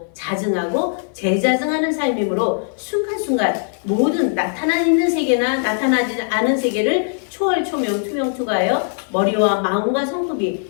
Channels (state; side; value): silent; right; 58 dB below the other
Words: 자증하고 재자증하는 삶이므로 순간순간 모든 나타나 있는 세계나 나타나지 않은 세계를 초월, 초명, 투명, 투과하여 머리와 마음과